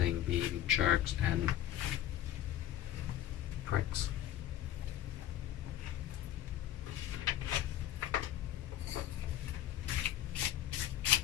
being jerks and pricks.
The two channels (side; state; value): right; quieter; 12.2 dB